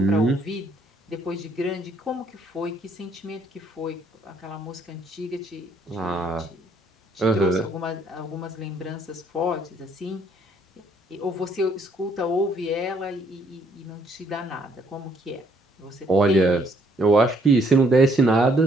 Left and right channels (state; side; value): normal; both; correlation 0.67